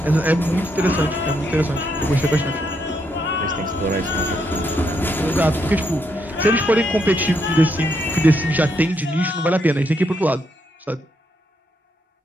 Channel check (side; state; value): both; normal; correlation 0.77